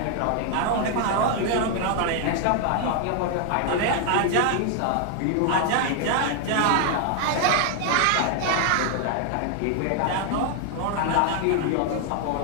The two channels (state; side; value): different; both; correlation 0.00